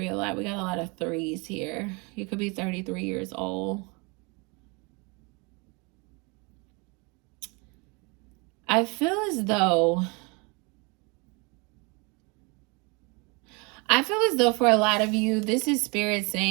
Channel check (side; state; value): left; quieter; 29.8 dB